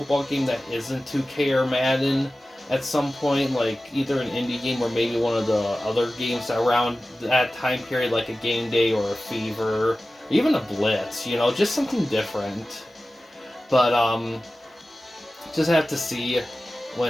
game that isn't 2K or Madden at some point, like either an indie game or maybe one of the other games around that time period, like a Game Day or a Fever, or even a Blitz, you know, just something different. But, just have to see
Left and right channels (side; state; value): both; normal; correlation 0.96